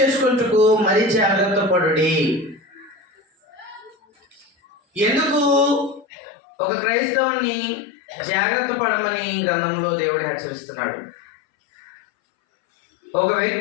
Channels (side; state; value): right; drops out; at 6.1 s